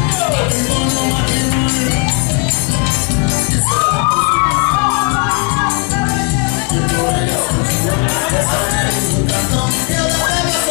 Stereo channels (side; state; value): right; quieter; 31.4 dB